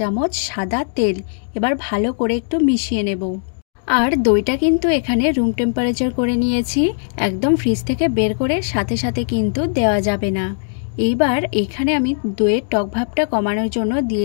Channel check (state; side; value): silent; right; digital silence